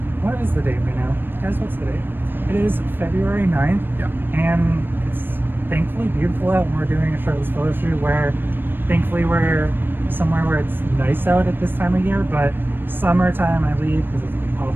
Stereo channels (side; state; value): left; late; 0.096 ms